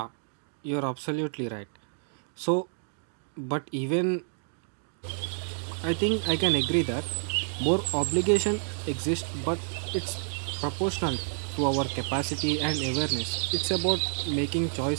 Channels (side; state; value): left; silent; digital silence